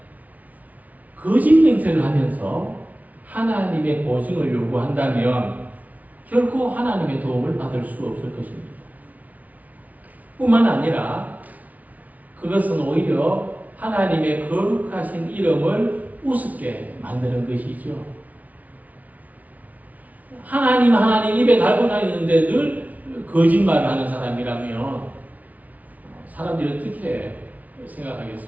거짓 맹세를 하면서 하나님의 보증을 요구한다면 결코 하나님의 도움을 받을 수 없을 것입니다. 뿐만 아니라 그것은 오히려 하나님의 거룩하신 이름을 우습게 만드는 것이죠. 하나님 입에 달고 다니는데 늘 거짓말을 하는 사람이라면 사람들이 어떻게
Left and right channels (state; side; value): late; left; 0.072 ms